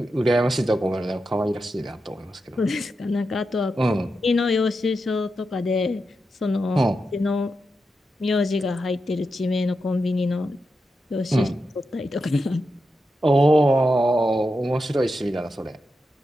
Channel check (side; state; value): both; normal; correlation 0.88